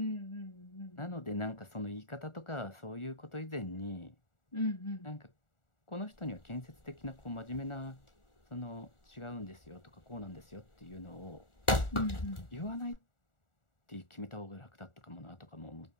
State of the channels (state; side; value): late; right; 1.4 ms